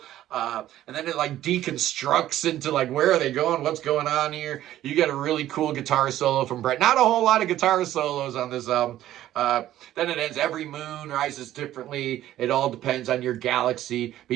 And then it like deconstructs into like, where are they going? What's going on here? You get a really cool guitar solo from Brett. Not a whole lot of guitar solos on this album. Then it ends, every moon rises differently. It all depends on your galaxy,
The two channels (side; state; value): left; quieter; 13.3 dB